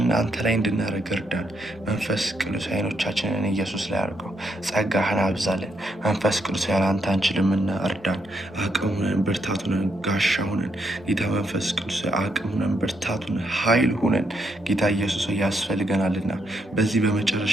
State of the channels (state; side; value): normal; both; correlation 0.77